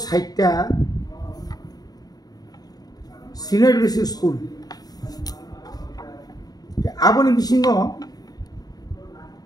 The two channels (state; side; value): late; right; 0.19 ms